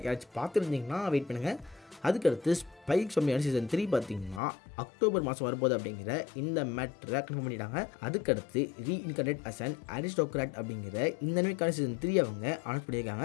யாராச்சும் பார்த்துருந்தீங்கன்னா வெயிட் பண்ணுங்கள். அதுக்கடுத்து ஸ்பைக் சொம்மியான சீசன் 3 பார்த்தீங்கன்னா அக்டோபர் மாதம் வரப்போகுது அப்படிங்கிற இந்த மேட்டரை கன்ஃபார்ம் பண்ணிட்டாங்க. அதுக்கடுத்து ரீஇன்கார்னேட் அஸ் அன் அரிஸ்டோக்ராட் அப்படிங்கிற இந்த அனிமேக்கான சீசன் 3 அவங்க அனௌன்ஸ்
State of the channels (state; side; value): drops out; right; at 4.4 s